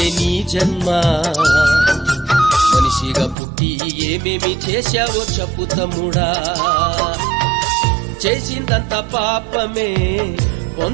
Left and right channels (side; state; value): left; drops out; at 3.4 s